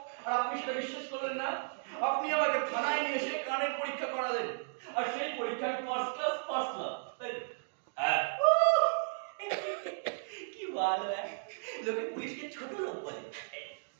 আর আপনি সেটা বিশ্বাস করলেন না, আপনি আমাকে থানায় নিয়ে এসে কানের পরীক্ষা করালেন, আর সেই পরীক্ষায় ফার্স্ট ক্লাস তাই তো? হ্যাঁ, কি ভালো, হ্যাঁ লোকে পুলিশকে ছোট লোক বলে,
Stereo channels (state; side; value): silent; left; digital silence